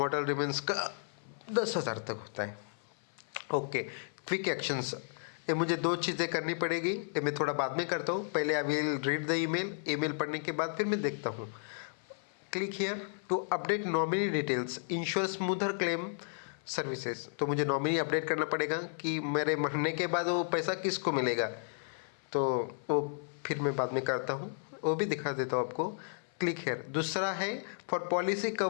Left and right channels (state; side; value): silent; right; 55 dB below the other